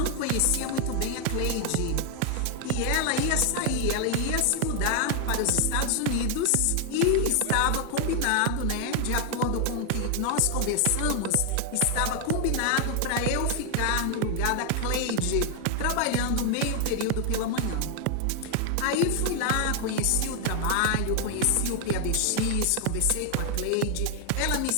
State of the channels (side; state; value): both; different; correlation 0.00